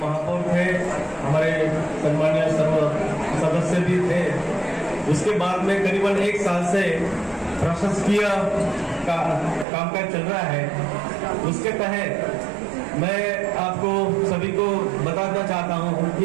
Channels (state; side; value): drops out; left; at 9.7 s